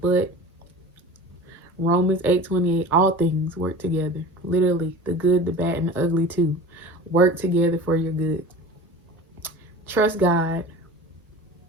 Romans 8:28, all things work together. Literally, the good, the bad, and the ugly too. Work together for your good. Trust God.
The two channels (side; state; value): both; normal; correlation 0.37